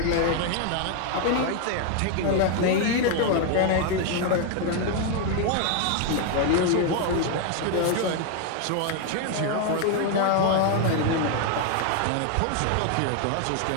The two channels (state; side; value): different; both; correlation 0.01